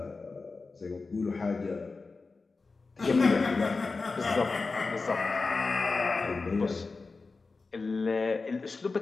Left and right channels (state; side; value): quieter; right; 4.0 dB